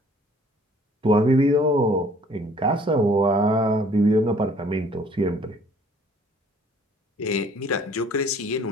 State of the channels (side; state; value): both; normal; correlation 0.56